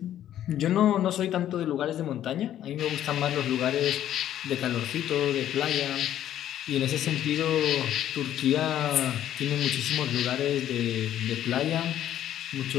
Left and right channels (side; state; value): right; quieter; 11.5 dB